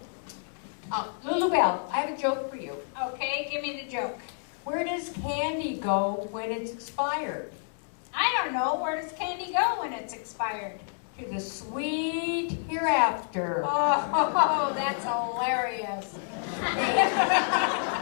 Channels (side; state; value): right; silent; 59 dB below the other